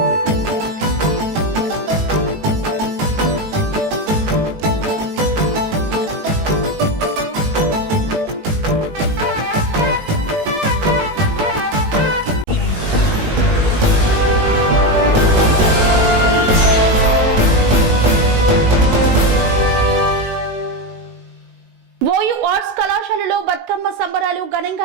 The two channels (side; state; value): left; late; 19 ms